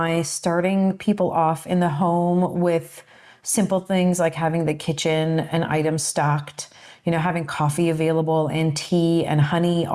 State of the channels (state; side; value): identical; both; correlation 1.00